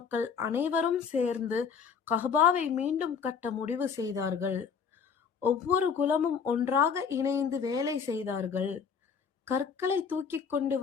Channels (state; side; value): quieter; right; 6.4 dB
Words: அனைவரும் சேர்ந்து கஅபாவை மீண்டும் கட்ட முடிவு செய்தார்கள். ஒவ்வொரு குலமும் ஒன்றாக இணைந்து வேலை செய்தார்கள். கற்களை தூக்கிக் கொண்டு